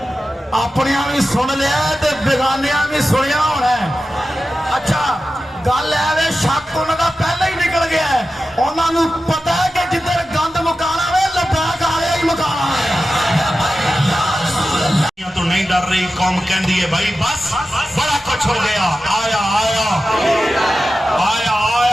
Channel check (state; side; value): normal; both; correlation 0.93